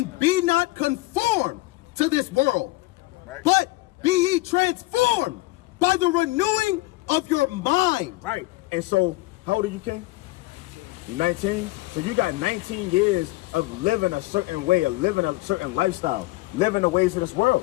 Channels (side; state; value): right; quieter; 20.6 dB